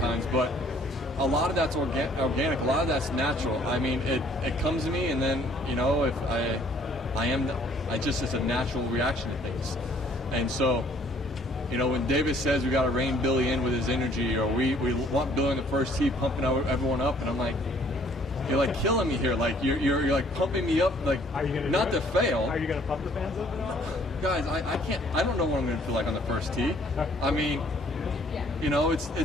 But a lot of that's organic. A lot of that's natural. I mean, it comes to me, and then, you know, if I just, it's a natural reaction to things. And so, you know, when David says we got to rein Billy in with his energy, or we want Billy in the first tee pumping everyone up, and I'm like, you're like killing me here. Like you're like pumping me up, like not to fail. Are you going to pump the fans up at all? Guys, I can't. I don't know what I'm going to feel like on the first tee. I mean, you know,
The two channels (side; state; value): both; normal; correlation 0.60